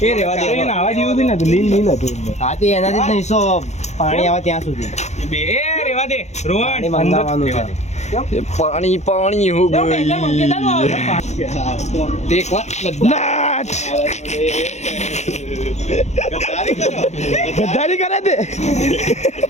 રેવા દે આવા જેવું બી નતું લીલ હતું હા તે એનાથી જ નહીં સો પાણી આવે ત્યાં સુધી પાણી મંગાવવાનું છે પાણી હો ગઈ એક વાર નાચ ગદ્દારી કરે તે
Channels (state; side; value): late; right; 0.33 ms